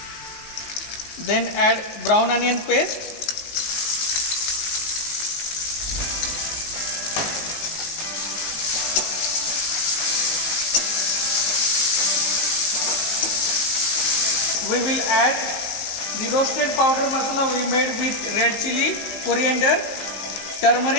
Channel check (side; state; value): right; late; 19 ms